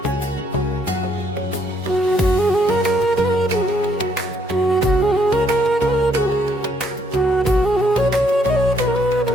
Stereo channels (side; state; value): both; normal; correlation 0.69